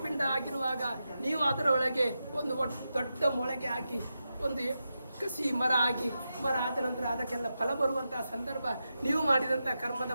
ಆಗಿರುವಾಗ ನೀವು ಅದರ ಒಳಗೆ ಒಂದು ದೊಡ್ಡ ಮೊಳಗೆ ಹಾಕಿ ಒಂದು ಕಸಿ ಮರ ಆಗಿ, ಮರ ಆದ ನಂತರ ಅದಕ್ಕೆಲ್ಲ ಫಲ ಬರುವಂತಹ ಸಂದರ್ಭ, ನೀವು ಮಾಡಿದಂಥ ಕರ್ಮದ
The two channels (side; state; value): both; inverted; correlation -0.88